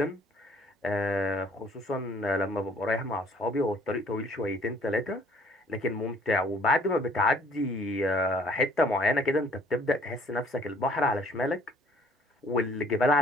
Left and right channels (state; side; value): normal; both; correlation 0.58